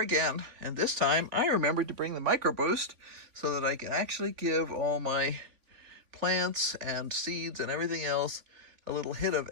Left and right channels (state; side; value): late; left; 3.5 ms